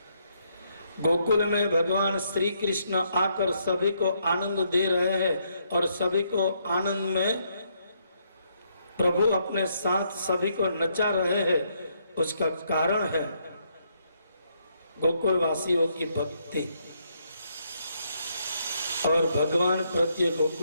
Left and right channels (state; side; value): inverted; both; correlation -0.74